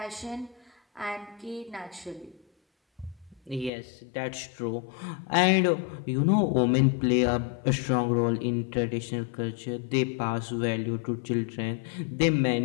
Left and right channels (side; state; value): right; drops out; at 3.7 s